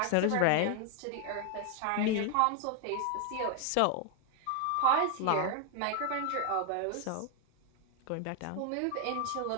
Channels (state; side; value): different; both; correlation 0.01